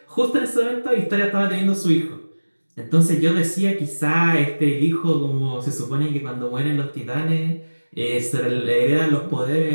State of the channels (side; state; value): both; inverted; correlation -1.00